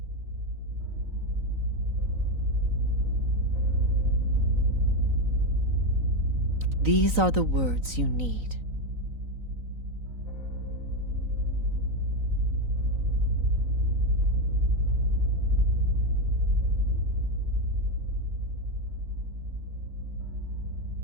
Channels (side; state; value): left; late; 3.9 ms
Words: These are the words you need.